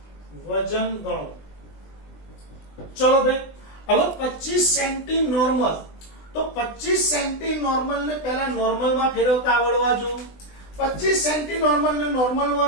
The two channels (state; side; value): late; right; 20 ms